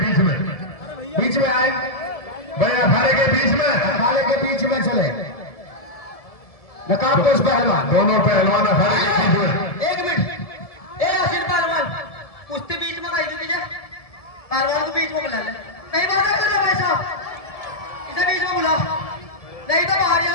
में, बीच में आए भैया अखाड़े के बीच में, अखाड़े के बीच में चले। नकाबपोश पहलवान, दोनों पहलवान अखाड़े के बीच में। एक मिनट, ए आसिर पहलवान, कुश्ती बीच में कहीं भी पहलवान को बीच में बुला ले। कहीं बात कर रहे भाई साहब, इसे बीच में बुला, नहीं तो बाहर ही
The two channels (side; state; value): right; late; 1.7 ms